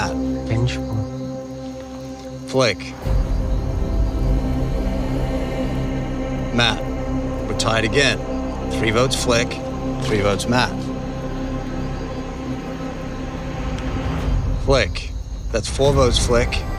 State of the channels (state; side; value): identical; both; correlation 1.00